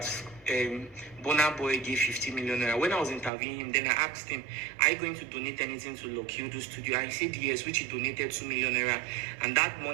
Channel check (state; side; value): drops out; left; at 3.3 s